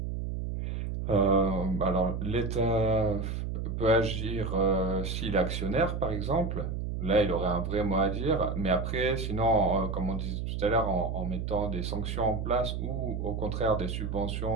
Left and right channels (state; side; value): noise; right; hum, 3 dB below the sound